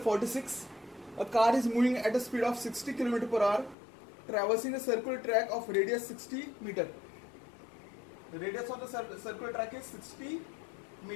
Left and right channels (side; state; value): right; drops out; at 3.8 s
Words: A car is moving at a speed of 60 km per hour, traversing a circular track of radius 60 meter. The radius of the circular track is 60